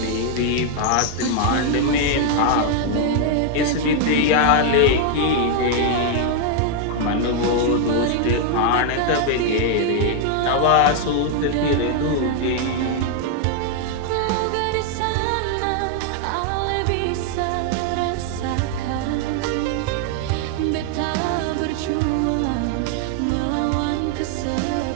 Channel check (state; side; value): different; both; correlation 0.00